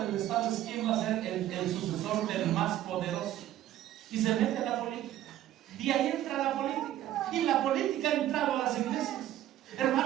Estado es quién va a ser el sucesor del más poderoso, y se mete la política, y ahí entra la política, y la política ha entrado a las iglesias.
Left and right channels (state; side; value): quieter; left; 13.0 dB